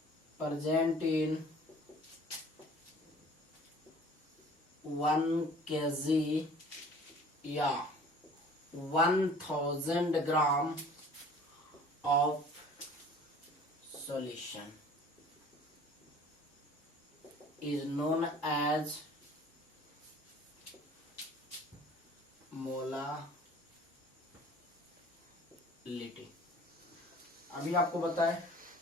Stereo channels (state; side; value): normal; both; correlation 0.48